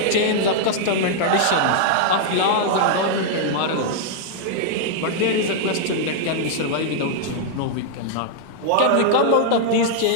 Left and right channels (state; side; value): different; both; correlation -0.01